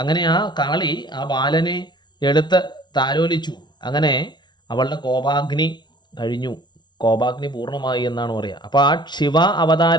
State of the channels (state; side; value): late; right; 0.21 ms